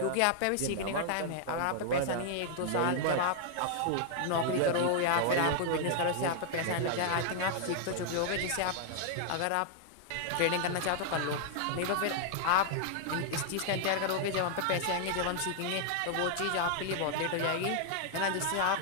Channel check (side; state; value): both; different; correlation -0.01